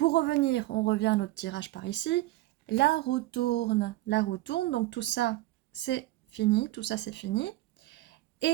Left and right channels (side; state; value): left; quieter; 17.4 dB